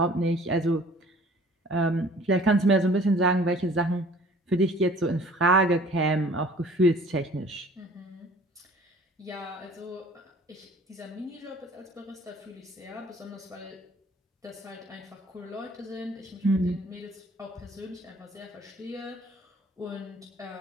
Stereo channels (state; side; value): normal; both; correlation 0.51